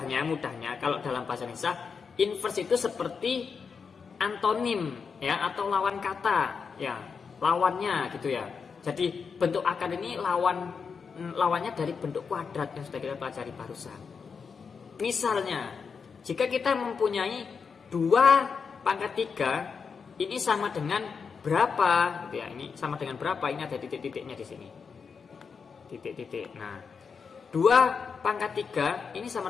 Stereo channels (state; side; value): quieter; right; 5.7 dB